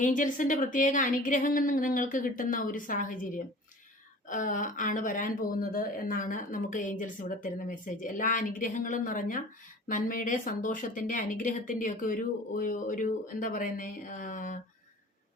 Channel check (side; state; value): both; normal; correlation 0.43